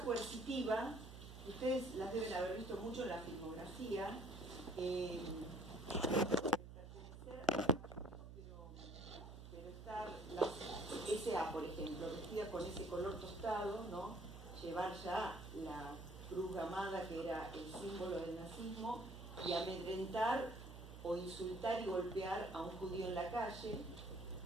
coercitiva, ustedes las deben haber visto mucho en la filmografía, pero estar la SA, por ejemplo, vestida con ese color tostado, ¿no? Llevar ya la cruz gamada, que era el símbolo del nazismo, y amedrentar o insultar y golpear a un judío en la calle,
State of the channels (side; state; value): right; noise; hum, 12 dB below the sound